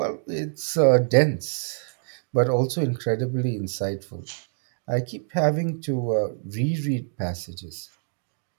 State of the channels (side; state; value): left; silent; digital silence